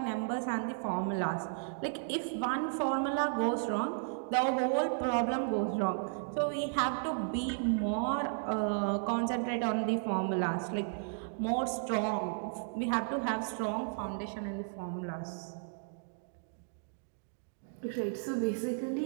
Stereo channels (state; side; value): silent; left; digital silence